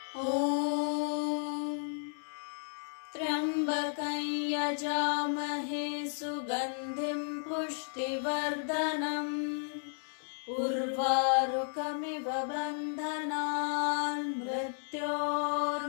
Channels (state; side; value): silent; right; digital silence